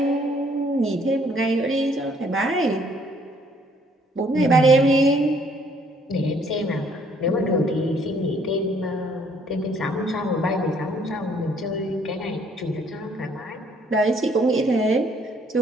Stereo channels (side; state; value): both; normal; correlation 0.63